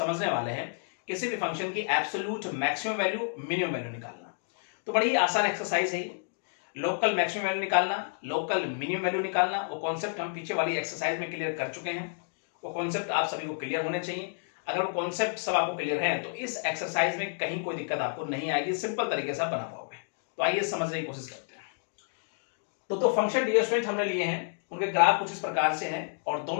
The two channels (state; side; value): silent; right; digital silence